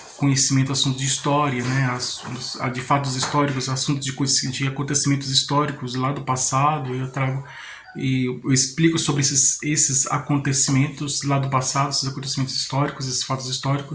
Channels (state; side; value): identical; both; correlation 1.00